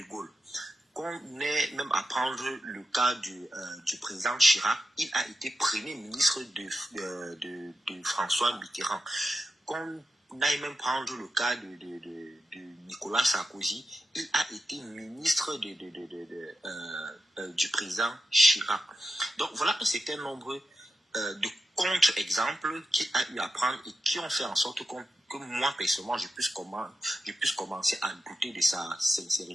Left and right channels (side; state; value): both; normal; correlation 0.88